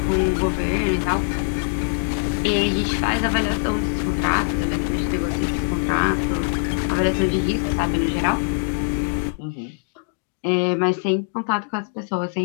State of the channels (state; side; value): silent; right; digital silence